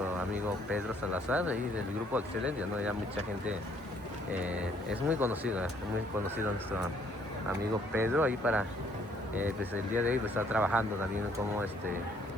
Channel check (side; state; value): both; normal; correlation 0.64